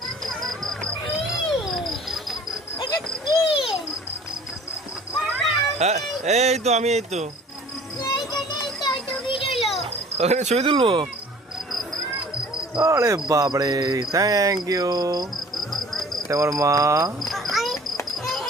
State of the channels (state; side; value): normal; both; correlation 0.49